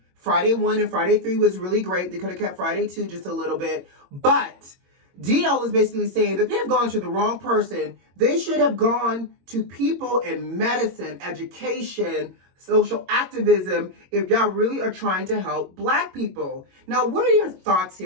Friday 1 and Friday 3 was really great. They could have kept Friday 2 just a little bit. But D.L. is basically saying that they've gone to the wrong person. They should have gone to people in medicine, education, social activism, if y'all really are trying to help Black people. Now, what are your thoughts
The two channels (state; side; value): late; left; 22 ms